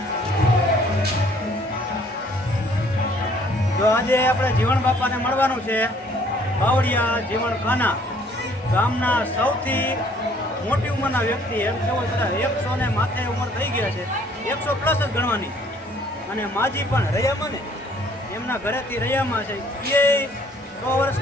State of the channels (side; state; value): both; normal; correlation 0.60